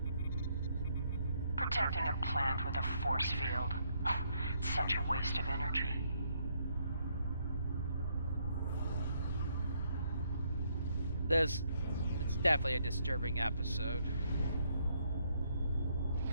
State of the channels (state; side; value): inverted; both; correlation -0.73